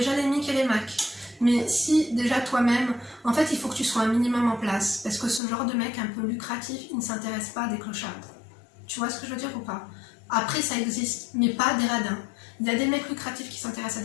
les Mic et les Mac. Mais si déjà toi-même, en fait il faut que tu sois un minimum en place. Parce que ce genre de mec un peu lucratif, il ne s'intéresse pas à des clochards. Tu vois ce que je veux dire ou pas? Après, ça existe, mais pas des radins. Il y a des mecs lucratifs qui s'intéressent à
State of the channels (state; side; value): drops out; right; at 5.4 s